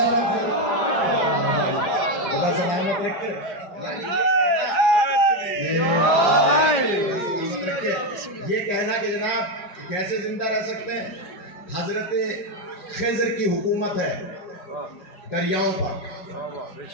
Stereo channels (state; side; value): late; right; 5.0 ms